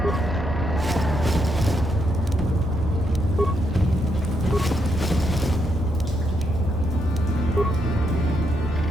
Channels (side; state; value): both; normal; correlation 0.78